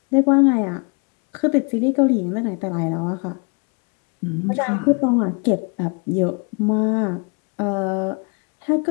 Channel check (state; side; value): quieter; right; 34.5 dB